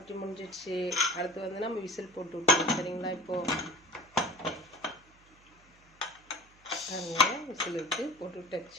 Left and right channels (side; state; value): right; noise; hum, 29 dB below the sound